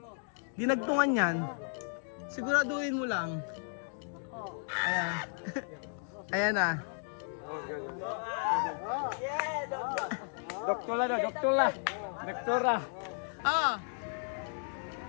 Dinagtungan yan. Siguraduhin mo lang. Ayan. Ayan na. Doktora daw, doktora. Doktora. Ah.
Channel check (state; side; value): silent; right; 55 dB below the other